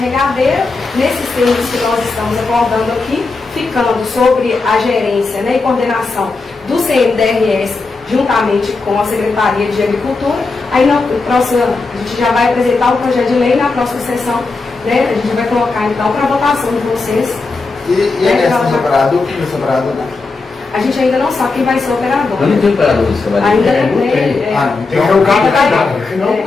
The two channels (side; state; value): right; quieter; 3.9 dB